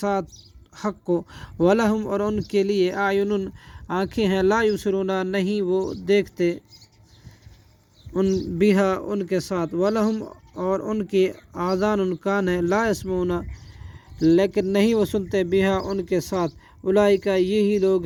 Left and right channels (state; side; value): identical; both; correlation 1.00